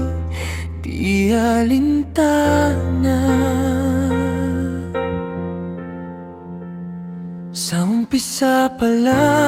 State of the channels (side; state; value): both; identical; correlation 1.00